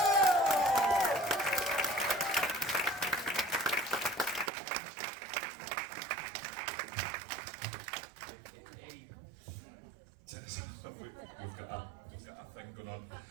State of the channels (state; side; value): drops out; left; at 4.5 s